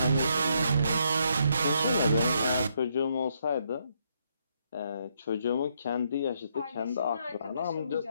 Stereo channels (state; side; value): inverted; both; correlation -0.74